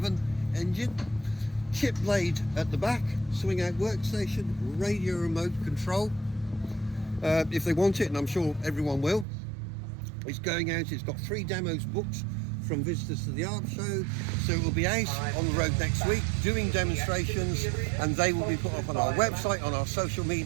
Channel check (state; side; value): drops out; left; at 9.2 s